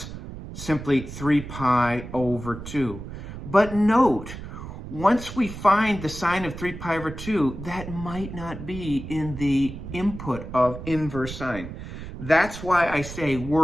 simply 3 pi over 2. But note, once we find the sine of 3 pi over 2, that might not be in the input of inverse sine. That's why I say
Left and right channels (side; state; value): right; noise; rumble, 10 dB below the sound